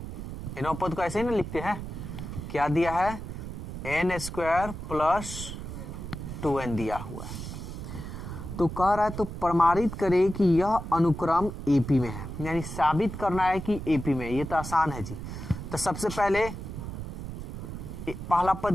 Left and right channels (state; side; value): noise; right; rumble, 8 dB below the sound